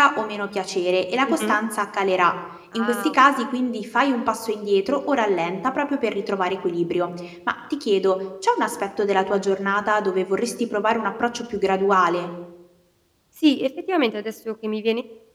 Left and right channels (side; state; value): both; identical; correlation 1.00